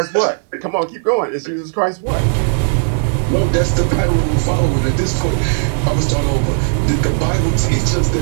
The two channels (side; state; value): left; silent; digital silence